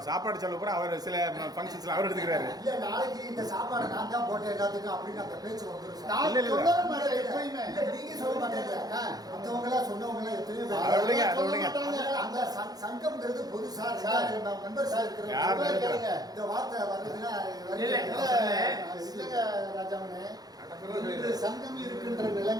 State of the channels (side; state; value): left; late; 0.19 ms